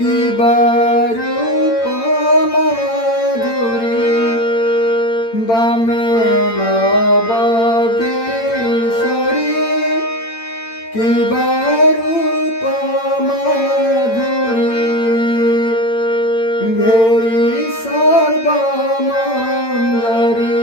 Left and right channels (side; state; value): right; late; 8.8 ms